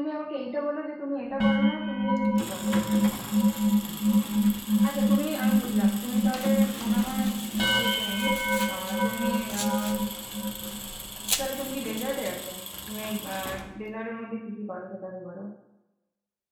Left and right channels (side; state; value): both; identical; correlation 1.00